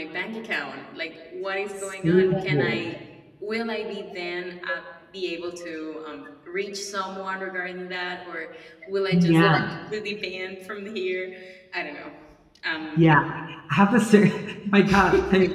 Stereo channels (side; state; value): both; identical; correlation 1.00